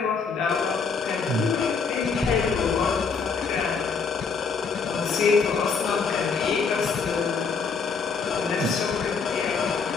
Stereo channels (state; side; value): quieter; right; 5.2 dB